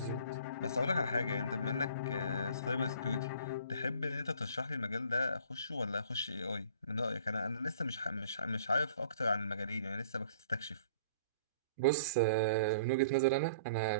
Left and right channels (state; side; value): inverted; both; correlation -0.52